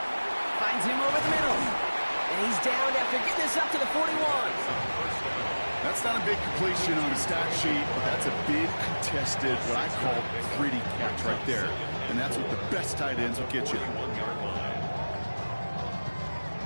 Finds him over the middle. And he's down after getting this up to the 41. That's not a big completion on the stat sheet, but that's a big contested, what I call pretty catch right there. And that's what the best tight ends will get you.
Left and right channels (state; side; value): inverted; both; correlation -1.00